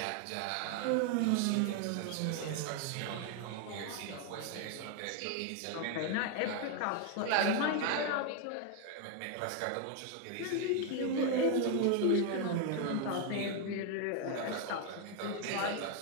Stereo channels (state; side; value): different; both; correlation 0.01